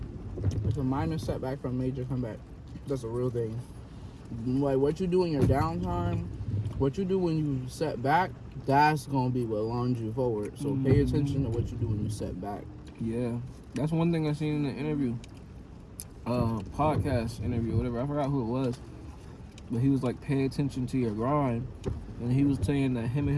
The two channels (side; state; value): both; identical; correlation 1.00